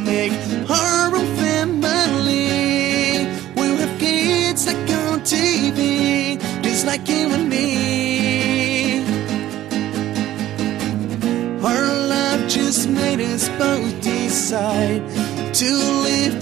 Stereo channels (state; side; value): quieter; left; 13.6 dB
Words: make our own family. We'll have kids like on TV, just like you and me. Our love just made us both decide to live